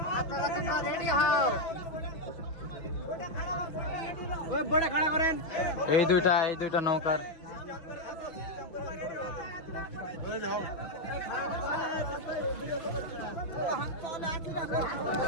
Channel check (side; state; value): right; late; 6.2 ms